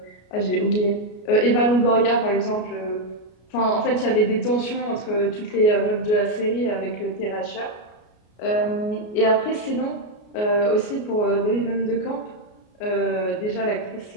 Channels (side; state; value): right; late; 33 ms